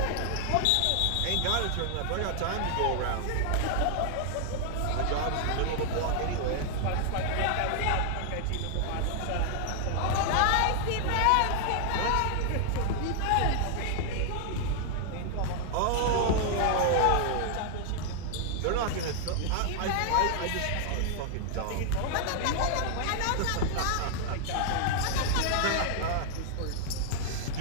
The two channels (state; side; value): different; both; correlation 0.00